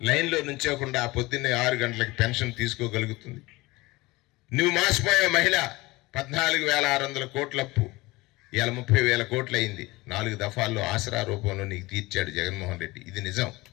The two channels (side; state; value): right; quieter; 21.5 dB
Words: లైన్లో నుంచోకుండా పొద్దున్నే 6 గంటలకు పెన్షన్ తీసుకోగలుగుతుంది. నువ్వు మాసిపోయే మహిళ 14,600 కోట్ల అప్పు ఇవాళ 30,000 కోట్లు అయింది. 4 దఫాల్లో ఆసరా రూపంలో నీకు తీర్చాడు జగన్మోహన్ రెడ్డి. ఇది నిజం